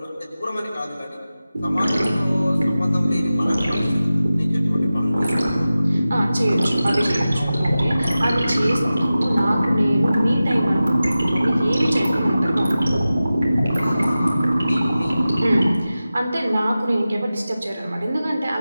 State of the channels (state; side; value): inverted; both; correlation -0.95